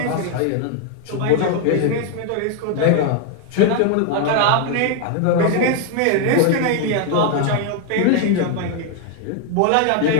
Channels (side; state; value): both; different; correlation 0.01